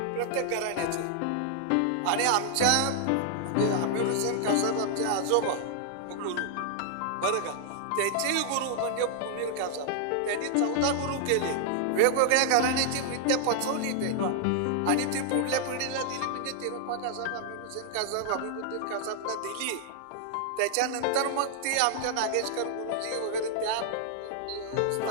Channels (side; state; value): both; different; correlation 0.00